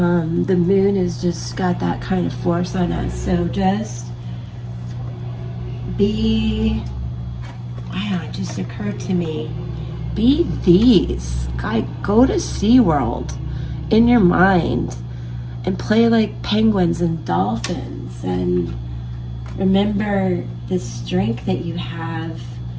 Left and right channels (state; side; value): identical; both; correlation 1.00